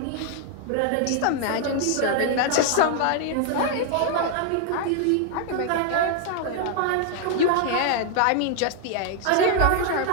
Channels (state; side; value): different; both; correlation 0.00